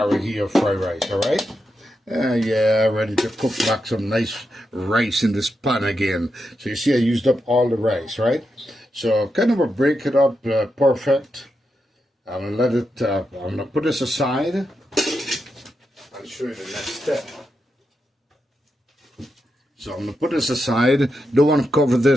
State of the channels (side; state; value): both; normal; correlation 0.86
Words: or fried rice, all right? Yeah, ready to cook back some nice rice in this pan again. So you see I used up all the rice, right? So kind of break it up perfect. I'm going to put this aside. I'll show you the next step. So I'm going to put this aside. Don't want to cover